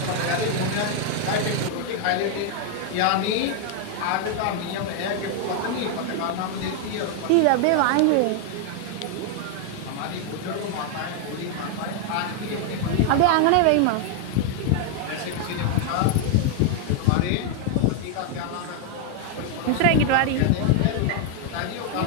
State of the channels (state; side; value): different; both; correlation 0.01